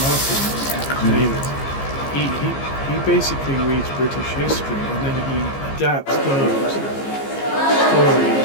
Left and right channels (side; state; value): right; late; 15 ms